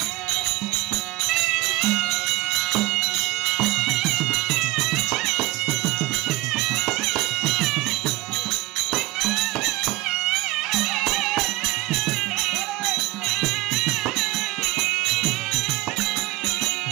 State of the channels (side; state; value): left; quieter; 19.2 dB